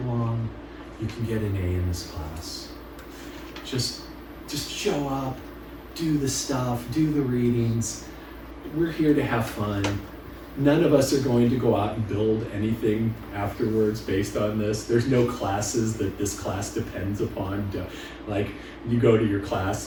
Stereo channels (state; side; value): identical; both; correlation 1.00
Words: you can get an A in this class. Just show up, do the stuff, do the readings. We're here to have fun. None of us are going to go out and build anything afterwards based on this. There's no classes that this class depends upon. Like, you go to your